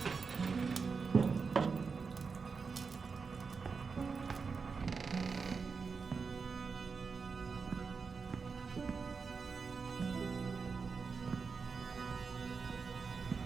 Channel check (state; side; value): quieter; left; 5.1 dB